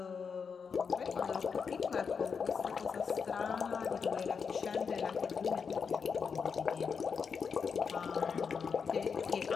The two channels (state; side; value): quieter; right; 5.9 dB